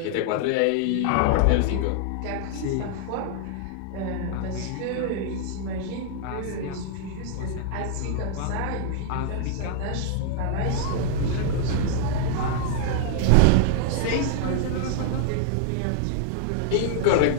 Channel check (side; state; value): both; different; correlation -0.01